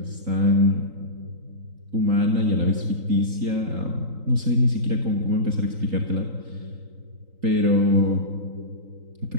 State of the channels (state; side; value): late; left; 3.9 ms